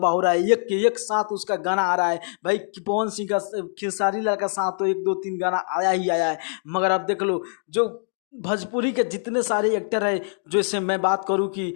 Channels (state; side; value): silent; right; digital silence